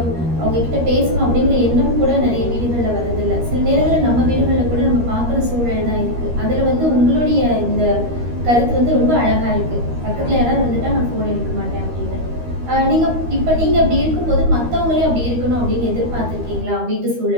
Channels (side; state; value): left; late; 13 ms